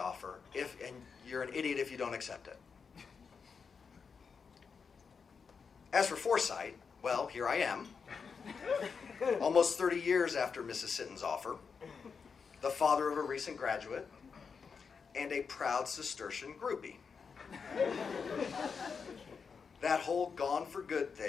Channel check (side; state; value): right; quieter; 5.7 dB